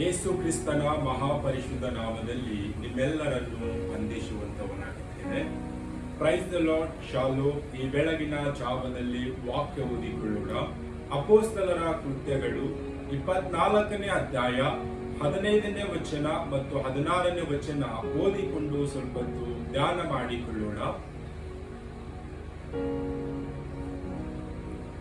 ಯೇಸು ಕ್ರಿಸ್ತನ ಮಹಾಪರಿಶುದ್ಧ ನಾಮದಲ್ಲಿ ನಿಮ್ಮೆಲ್ಲರನ್ನು ವಂದಿಸುವಂತವನಾಗಿದ್ದೇನೆ. Praise the Lord. ಶಾಲೋ. ಈ ಬೆಳಗಿನ ಜಾವದಲ್ಲಿ ವಾಕ್ಯ ಓದಿಕೊಳ್ಳೋಣ. ಅಪೊಸ್ತಲರ ಕೃತ್ಯಗಳು 24ನೇ ಅಧ್ಯಾಯ 15ನೇ ವಚನ ಮತ್ತು 16ನೇ ವಚನ ಓದಿಕೊಂಡು ಸ್ವಲ್ಪ ಧ್ಯಾನ ಮಾಡಿಕೊಳ್ಳೋಣ.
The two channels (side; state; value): both; identical; correlation 1.00